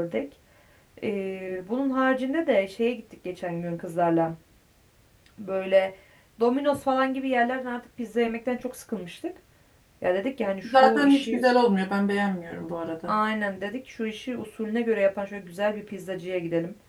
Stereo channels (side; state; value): both; identical; correlation 1.00